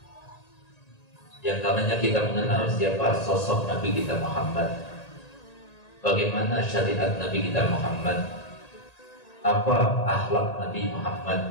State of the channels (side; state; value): right; late; 1.8 ms